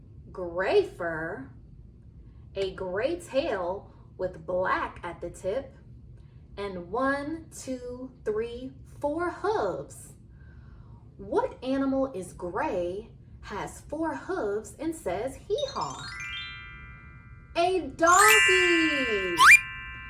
gray fur, a gray tail with black at the tip, and 1, 2, 3, 4 hooves. What animal is gray, has 4 hooves, and says hee-haw? A donkey!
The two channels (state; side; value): identical; both; correlation 1.00